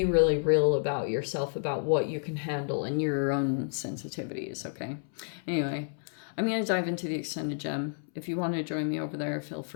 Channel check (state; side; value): silent; right; 58 dB below the other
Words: really real about yourself, about what you can handle and your own sensitivities. Okay. Anyway, I'm going to dive into the extended gem. If you want to join me over there, feel